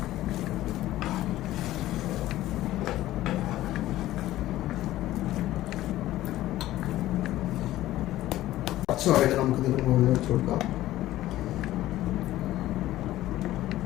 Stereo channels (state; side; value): quieter; right; 15.1 dB